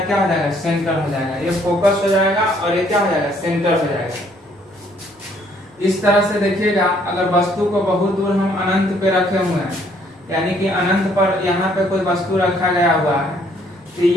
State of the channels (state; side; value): normal; both; correlation 0.65